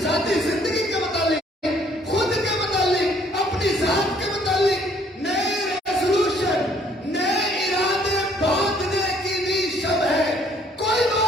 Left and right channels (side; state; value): both; normal; correlation 0.62